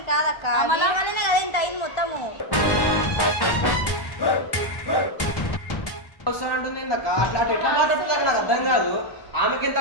కాదక్క, అమలా వల్లనే కదా ఇంత అయింది మొత్తము. వస్తానంటుంది అట్లా ఎట్లా మాట్లాడుతుంది నాకు అర్థం కాదు. ఆమెకి ఎంత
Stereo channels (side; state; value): right; late; 1.1 ms